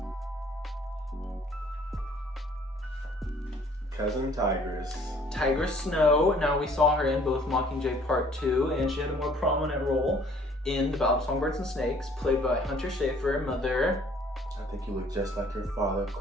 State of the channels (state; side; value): normal; both; correlation 0.57